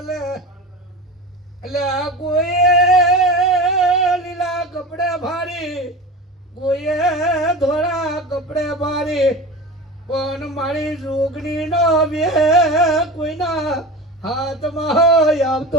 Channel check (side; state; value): both; normal; correlation 0.30